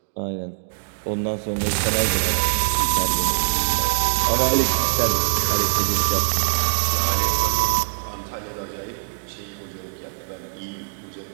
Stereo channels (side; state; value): left; silent; digital silence